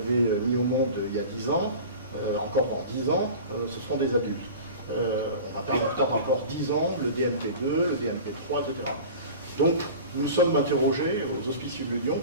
mis au monde il y a 10 ans, encore dans 10 ans, ce seront des adultes. On va pas attendre encore 10 ans, le DMP2, le DMP3, etc. Donc, nous sommes interrogés aux Hospices Civils de Lyon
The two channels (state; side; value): inverted; both; correlation -0.37